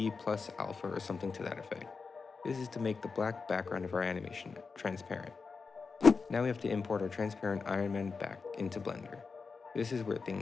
plus alpha or something to that effect. This is to make the black background of our animation transparent. Now we have to import our transparent Iron Man back into Blender. This is where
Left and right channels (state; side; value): quieter; right; 4.8 dB